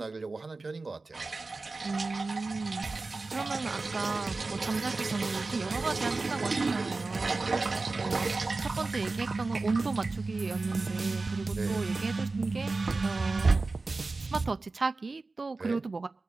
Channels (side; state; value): left; quieter; 3.6 dB